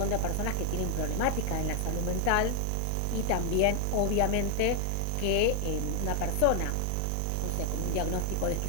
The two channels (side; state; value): both; different; correlation 0.00